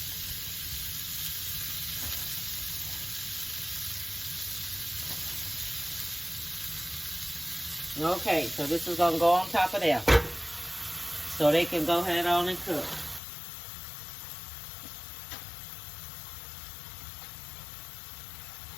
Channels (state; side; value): drops out; right; at 13.2 s